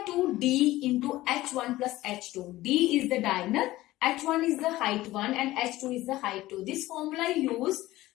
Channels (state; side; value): quieter; right; 16.9 dB